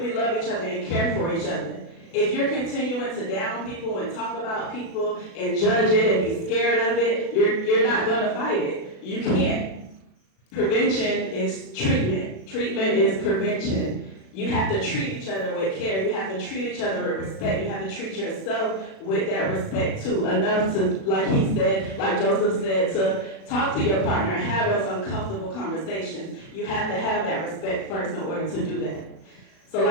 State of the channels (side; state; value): right; late; 36 ms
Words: love each other and care for each other. If you're continuing to down people and talk about people and judge it and be scared of it, you're not gonna fight it. You can't. Prevention is treatment. Treatment is prevention. You have to treat each other with care. You have to treat each other with respect. You have to treat yourself with that respect too. Enough to, like he said, like Joseph said, to talk to your partner and have those uncomfortable conversations. You have to have that respect first in order to do that. So